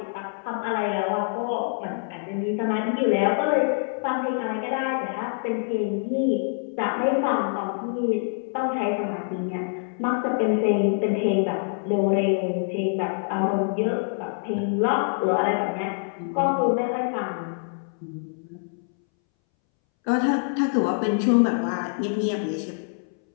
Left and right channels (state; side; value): silent; right; 61 dB below the other